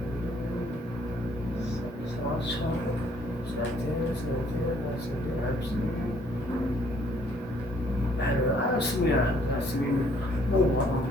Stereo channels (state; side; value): normal; both; correlation 0.63